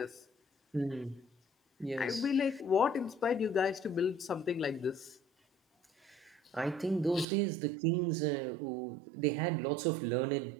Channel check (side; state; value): left; drops out; at 7.2 s